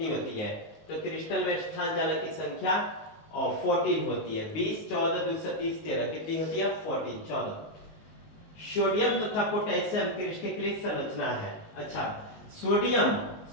होती है? तो क्रिस्टल में स्थान जालक की संख्या 14 होती है। 20 14 2 30 13 कितनी होती है? 14 14। सोडियम तथा पोटेशियम क्रिस्टलीय संरचना है। अच्छा,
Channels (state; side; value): late; right; 19 ms